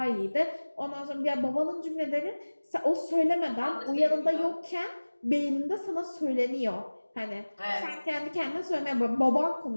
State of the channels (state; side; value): inverted; both; correlation -1.00